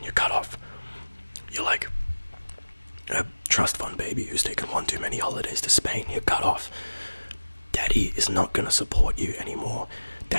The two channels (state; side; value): inverted; both; correlation -1.00